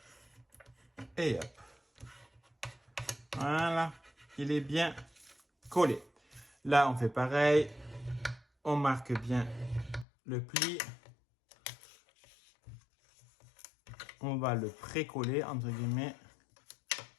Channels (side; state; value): right; drops out; at 10.1 s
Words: Et hop. Voilà. Il est bien collé. Là, on fait pareil. On marque bien le pli. On va le pré-coller, entre guillemets.